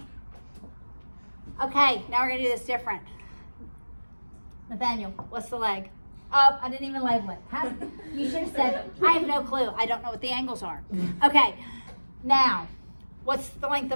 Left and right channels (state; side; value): inverted; both; correlation -1.00